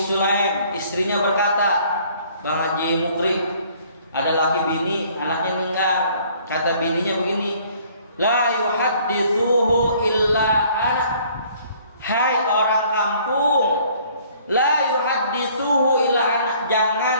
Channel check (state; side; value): inverted; both; correlation -0.58